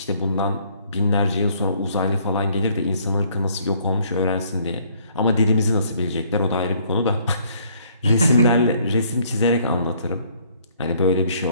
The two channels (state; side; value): inverted; both; correlation -0.63